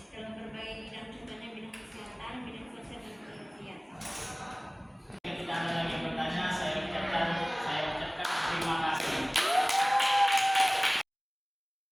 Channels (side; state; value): both; identical; correlation 1.00